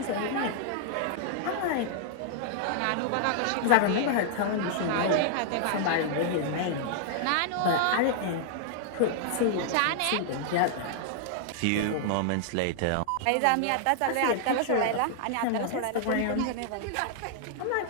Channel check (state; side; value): different; both; correlation -0.01